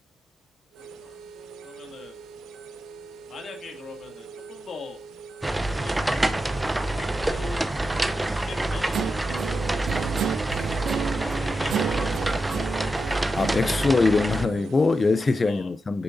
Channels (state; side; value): normal; both; correlation 0.89